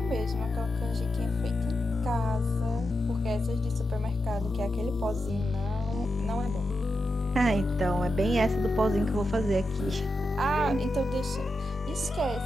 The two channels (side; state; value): both; normal; correlation 0.88